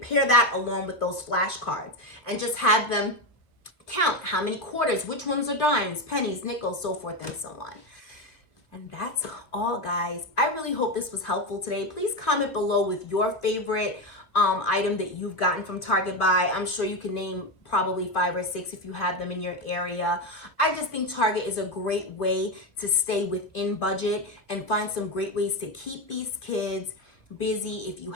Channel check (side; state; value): right; late; 2.4 ms